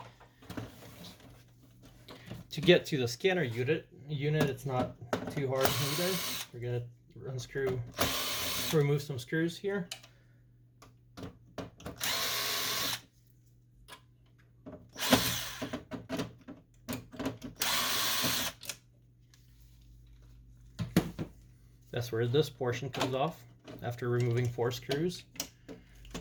To get to the scanner unit, it's not too hard either. We're going to remove some screws here. That's where this portion comes off after removing 4 screws.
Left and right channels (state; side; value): identical; both; correlation 1.00